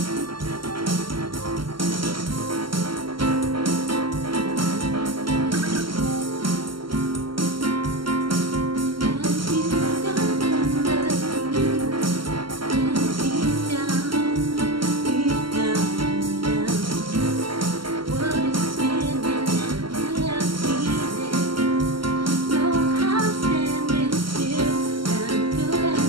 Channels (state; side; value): late; left; 0.73 ms